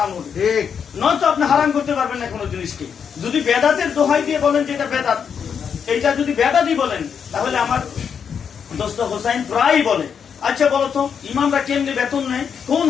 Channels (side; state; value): right; quieter; 7.1 dB